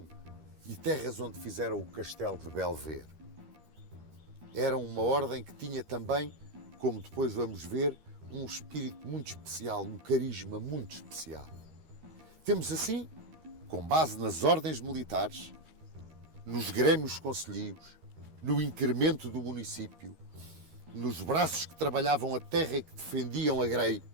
e terras onde fizeram o castelo de Belver. Eram uma ordem que tinha também, como depois vamos ver, um espírito muito especial, um carisma muito especial. Temos assim, com base nas ordens militares, nos grêmios concelhios, no incremento do município, nos braços que trabalhavam a terra e que defendiam a grei,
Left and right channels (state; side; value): late; left; 13 ms